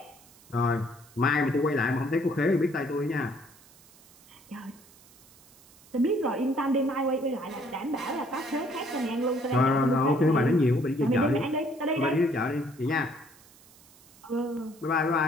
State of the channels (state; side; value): noise; right; hiss, 26 dB below the sound